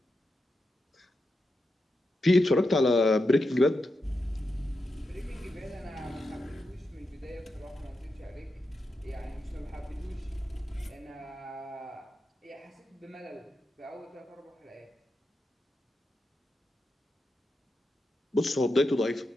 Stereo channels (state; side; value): normal; both; correlation 0.87